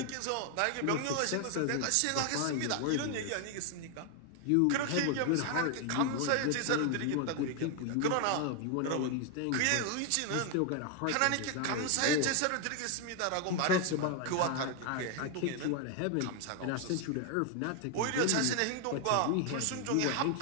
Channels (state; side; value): different; both; correlation 0.00